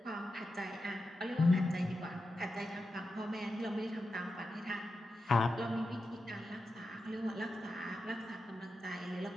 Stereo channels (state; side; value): normal; both; correlation 0.90